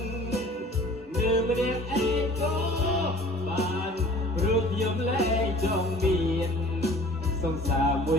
ម្នាក់ឯងក៏បានព្រោះខ្ញុំលែងចង់មានសង្សារមួ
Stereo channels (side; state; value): both; normal; correlation 0.48